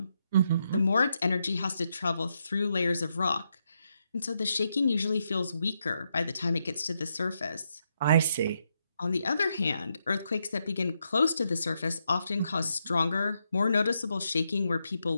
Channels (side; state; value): both; inverted; correlation -0.81